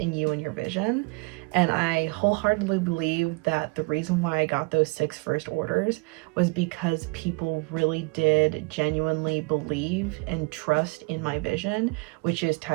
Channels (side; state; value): left; quieter; 29.2 dB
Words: you and your vision. And I wholeheartedly believe that the reason why I got those 6 first orders was because people really did genuinely believe and trust in my vision, which is